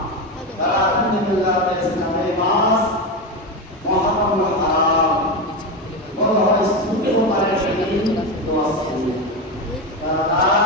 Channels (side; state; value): both; normal; correlation 0.16